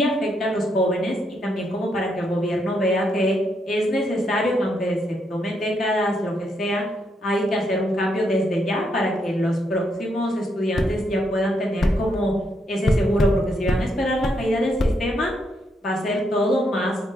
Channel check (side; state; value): both; normal; correlation 0.78